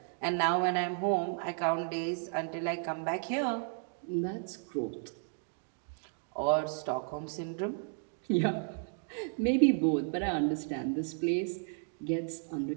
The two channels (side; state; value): left; silent; 55 dB below the other